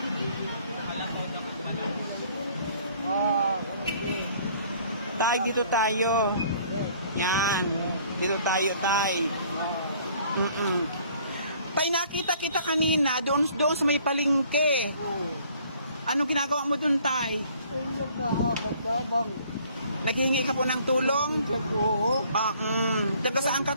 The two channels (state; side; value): inverted; both; correlation -0.57